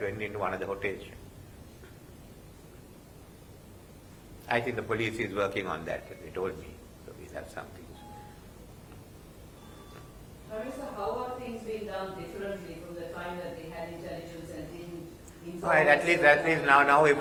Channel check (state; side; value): identical; both; correlation 1.00